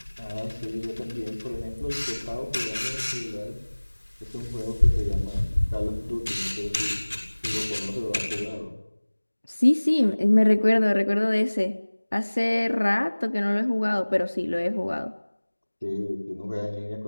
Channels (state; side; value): inverted; both; correlation -1.00